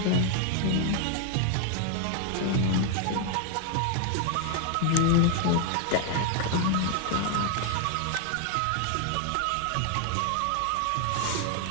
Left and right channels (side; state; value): both; different; correlation 0.00